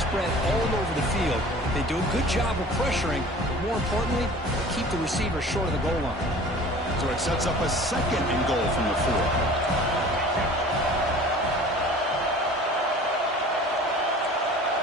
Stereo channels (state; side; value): normal; both; correlation 0.44